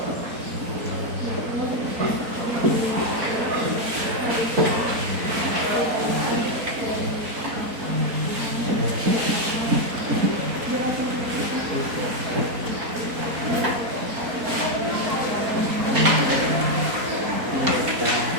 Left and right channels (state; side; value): late; left; 4.2 ms